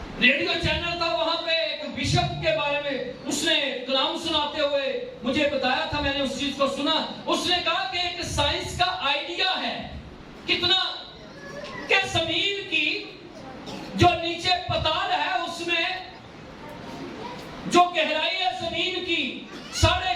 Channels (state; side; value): identical; both; correlation 1.00